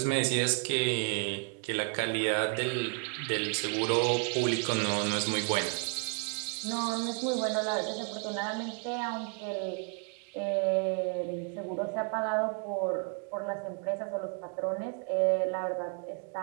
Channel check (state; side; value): quieter; left; 39.9 dB